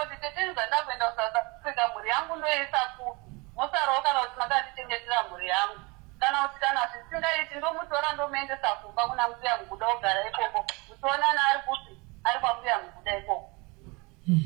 kuti tete ndizanda kuenda kuSouth Africa mhuri yangu ndoisa kupi mosarawo kana kuti makandichengetera mhuri yangu kana kuti kana zvisingaiti ndomutora ndomuendesa kumba kuna mbuya muguda kugara ikoko muchionana ari kuti ari kwambuya muguda ikoko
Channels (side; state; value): left; quieter; 27.1 dB